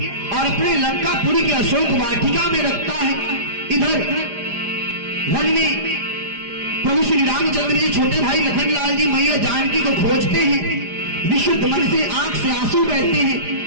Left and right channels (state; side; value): late; left; 4.9 ms